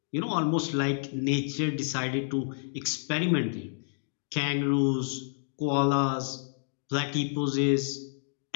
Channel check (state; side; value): silent; right; digital silence